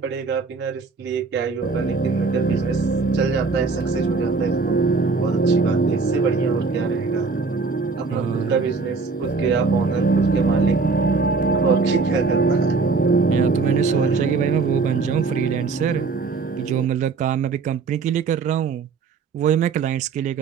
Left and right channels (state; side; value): quieter; left; 4.5 dB